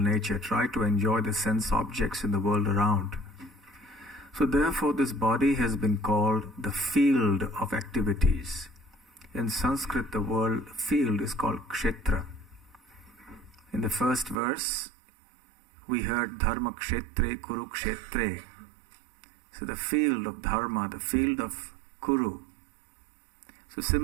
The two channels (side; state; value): left; drops out; at 14.4 s